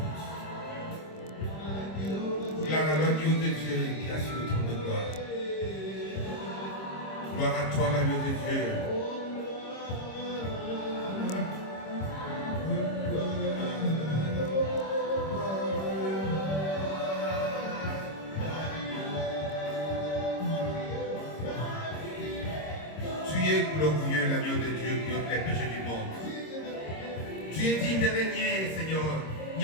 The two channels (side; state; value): right; late; 26 ms